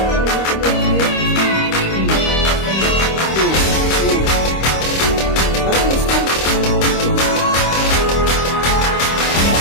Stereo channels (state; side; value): late; right; 26 ms